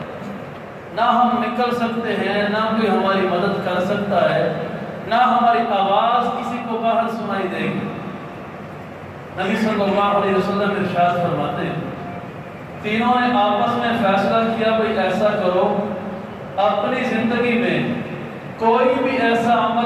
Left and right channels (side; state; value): both; identical; correlation 1.00